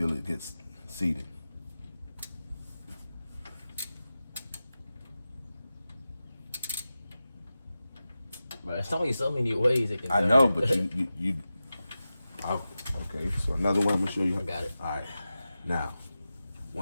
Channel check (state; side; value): inverted; both; correlation -0.94